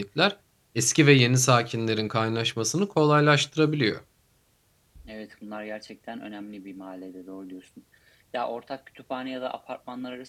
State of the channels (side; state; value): both; identical; correlation 1.00